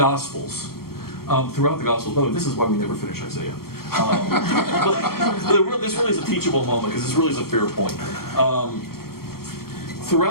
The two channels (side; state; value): right; late; 0.94 ms